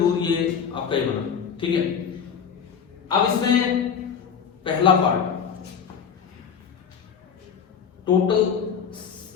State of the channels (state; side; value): quieter; right; 7.1 dB